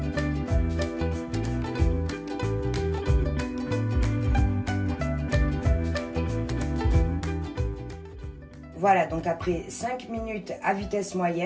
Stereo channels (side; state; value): both; identical; correlation 1.00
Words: Voilà, donc après 5 minutes à vitesse